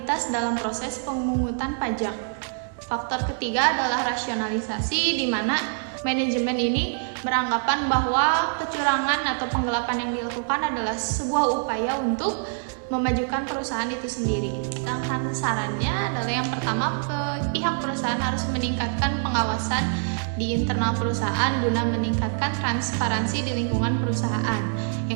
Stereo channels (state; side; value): silent; left; 62 dB below the other